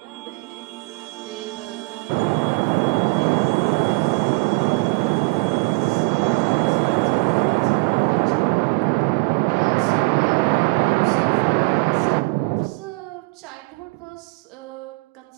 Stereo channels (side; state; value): left; quieter; 28.0 dB